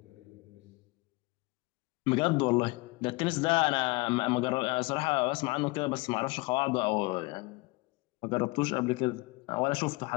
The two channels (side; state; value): right; quieter; 24.3 dB